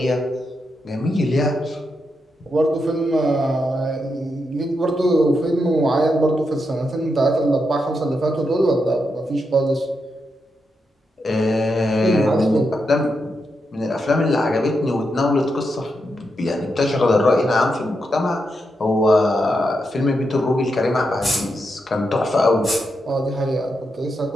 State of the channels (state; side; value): normal; both; correlation 0.84